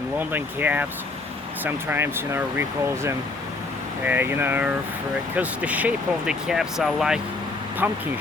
London cabs. Sometimes, we call them, because the shape of the cabs are like pumpkin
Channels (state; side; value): quieter; right; 3.4 dB